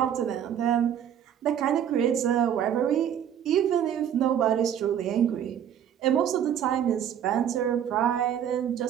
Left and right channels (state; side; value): quieter; left; 9.5 dB